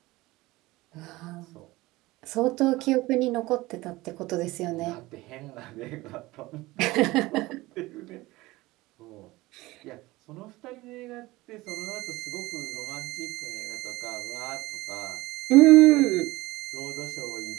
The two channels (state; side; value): quieter; left; 19.9 dB